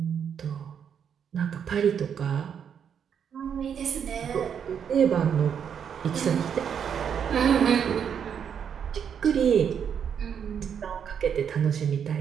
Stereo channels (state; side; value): quieter; left; 7.9 dB